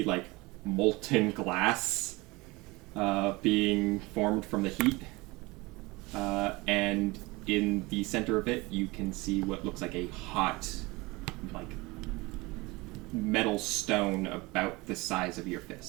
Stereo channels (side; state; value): left; quieter; 23.2 dB